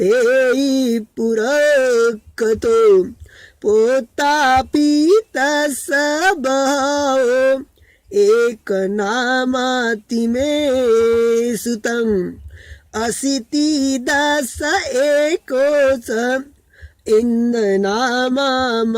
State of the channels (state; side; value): identical; both; correlation 1.00